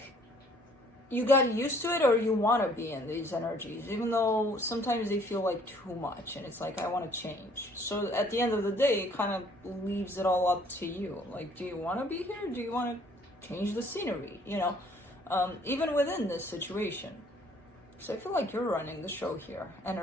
you got used to it, or you want to be in these energies, even though sometimes they feel like too much, and it's like I want to change. So at the end of the day, it kind of leaves it all up to you. Like, do you want to be here? Do you want to change the scenery? You know. Even within this situation. So I feel like you're running the show here,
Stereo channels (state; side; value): normal; both; correlation 0.59